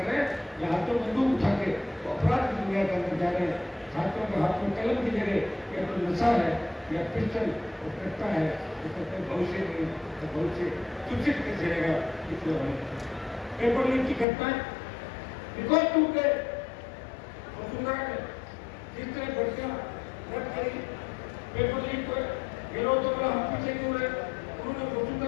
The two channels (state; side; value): drops out; right; at 14.2 s